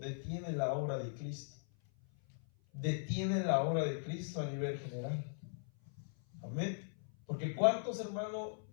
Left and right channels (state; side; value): silent; right; 52 dB below the other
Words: la obra de Cristo. Detiene la obra de Cristo a nivel general. Amén. Porque cuántos, hermanos,